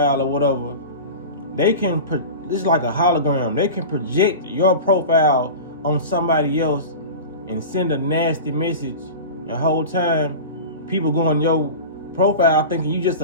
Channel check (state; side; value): inverted; both; correlation -0.31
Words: or whatever, they can. This is like a hologram. They can project your profile on somebody else and send a nasty message. The whole time, people go on your profile thinking you just